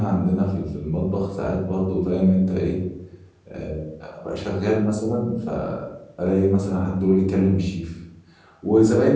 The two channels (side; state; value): both; identical; correlation 1.00